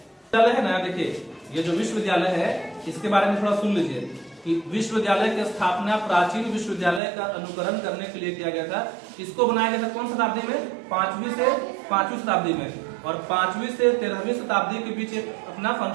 है ना, देखिए ये जो विश्वविद्यालय है इसके बारे में थोड़ा सुन लीजिए कि विश्वविद्यालय की स्थापना प्राचीन विश्वविद्यालय का अनुकरण करने के लिए किया गया था। इसको बनाया गया था कौन शताब्दी में? 5वीं शताब्दी में, और 5वीं से 13वीं शताब्दी के बीच एक अपना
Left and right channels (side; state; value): left; drops out; at 7.0 s